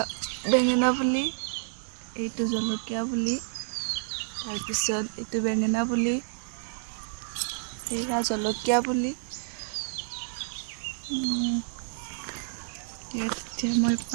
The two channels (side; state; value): left; silent; digital silence